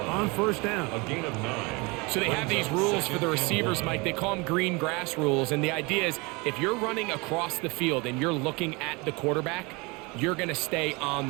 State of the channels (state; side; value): quieter; left; 26.9 dB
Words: on first down. A gain of 9. So they have these rules for the receivers, Mike. They call them green grass rules, and the idea is if you're running across the field and you're looking at the quarterback, you're going to stay on